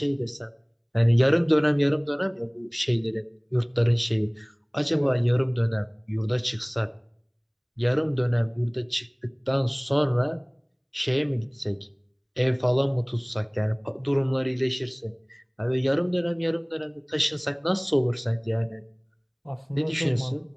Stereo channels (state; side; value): identical; both; correlation 1.00